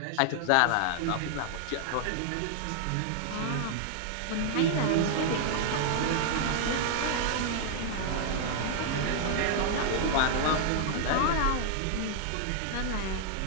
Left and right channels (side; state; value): both; different; correlation -0.01